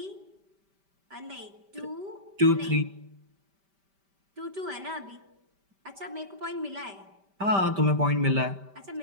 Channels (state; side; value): late; left; 5.1 ms